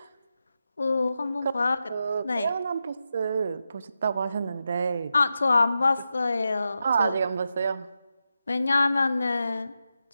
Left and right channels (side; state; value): both; inverted; correlation -0.89